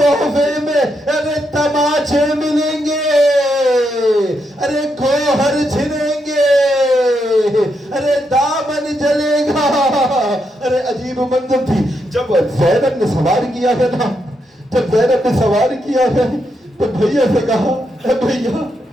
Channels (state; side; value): normal; both; correlation 0.81